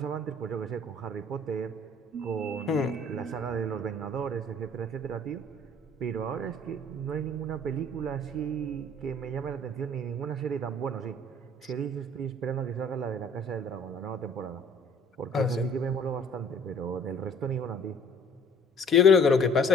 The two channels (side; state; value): both; normal; correlation 0.53